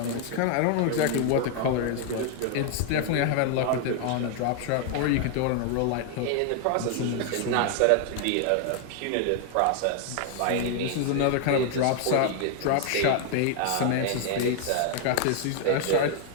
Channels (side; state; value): both; different; correlation 0.00